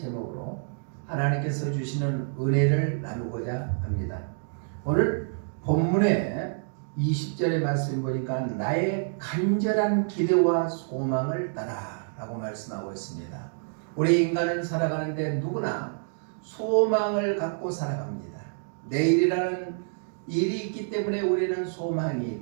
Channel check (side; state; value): left; silent; digital silence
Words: 하나님께서 주시는 은혜를 나누고자 합니다. 오늘 본문의 20절의 말씀 보니까 나의 간절한 기대와 소망을 따라 라고 말씀하고 있습니다. 우리 인간은 살아가는데 누구나 소망을 갖고 살아갑니다. 내일이라는 일이 있기 때문에 우리는 소망이